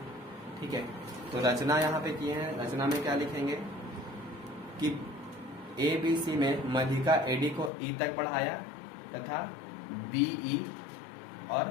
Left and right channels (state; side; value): drops out; right; at 7.7 s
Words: ठीक है। तो रचना यहाँ पे किए हैं। रचना में क्या लिखेंगे कि ABC में मध्यिका AD को E तक बढ़ाया तथा BE